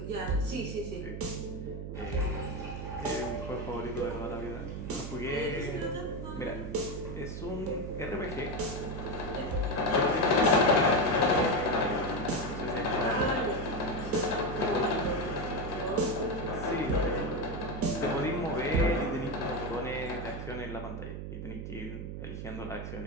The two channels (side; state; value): right; noise; hum, 6 dB below the sound